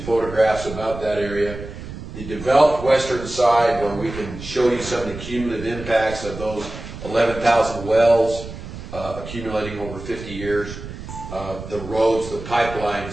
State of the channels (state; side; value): noise; right; rumble, 11 dB below the sound